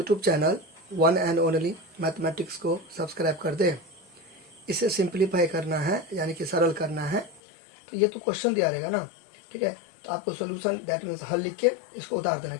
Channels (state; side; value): drops out; right; at 7.4 s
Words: channel one and only mathematics को सब्सक्राइब कर दे। इसे सिंप्लीफाई करना है, यानी कि सरल करना है। तो ये तो क्वेश्चन दिया रहेगा ना, ठीक है। तो आपको सोल्यूशन दैट मीन्स हल लिख के इसको उतार देना है,